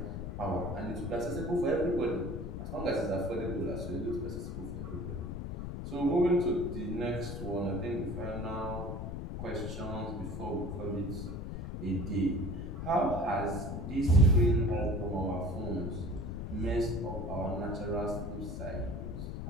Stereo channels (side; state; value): left; noise; rumble, 5 dB below the sound